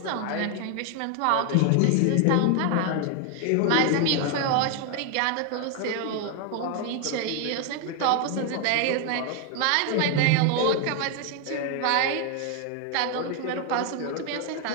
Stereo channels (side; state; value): both; different; correlation 0.01